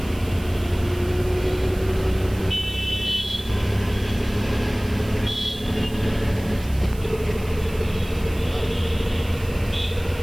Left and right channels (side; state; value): right; noise; hiss, 19 dB below the sound